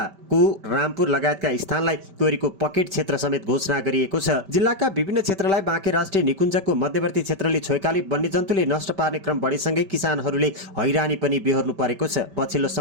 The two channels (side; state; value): left; late; 5.1 ms